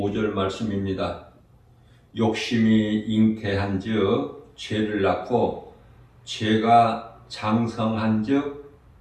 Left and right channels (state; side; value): identical; both; correlation 1.00